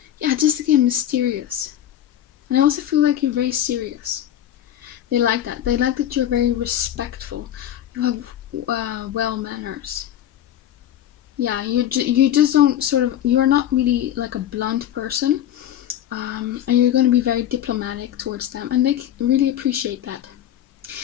yeah, just again, mysterious. And I also feel like you're very serious. They like that. They like that you're very respectful. You have well manners. Yeah, you just don't sort of, you're not really like a blunt person. And you're going to be very diplomatic towards them. And they really appreciate that.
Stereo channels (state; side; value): quieter; right; 11.4 dB